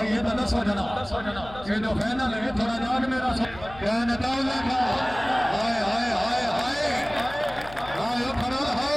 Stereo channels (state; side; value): noise; left; hum, 17 dB below the sound